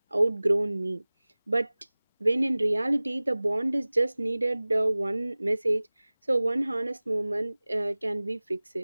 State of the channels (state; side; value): inverted; both; correlation -0.99